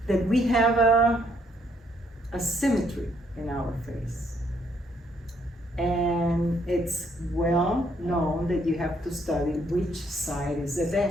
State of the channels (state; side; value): normal; both; correlation 0.70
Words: that we have a symmetry in our face. And it's well known that you have to study which side is the